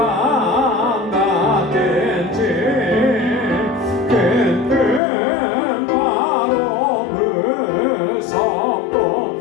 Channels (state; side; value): drops out; right; at 5.0 s